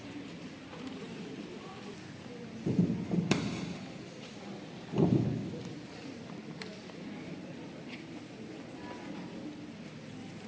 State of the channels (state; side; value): identical; both; correlation 1.00